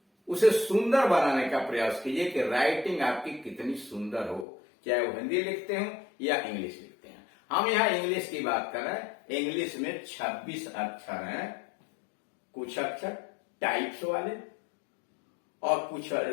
उसे सुंदर बनाने का प्रयास कीजिए कि राइटिंग आपकी कितनी सुंदर हो, चाहे वो हिंदी लिखते हो या इंग्लिश लिखते हैं। हम यहां इंग्लिश की बात कर रहे हैं। इंग्लिश में 26 अक्षर हैं, कुछ अक्षर टाइप्स वाले और कुछ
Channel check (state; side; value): drops out; right; at 4.5 s